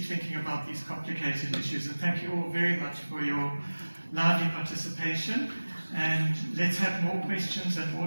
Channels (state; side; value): inverted; both; correlation -1.00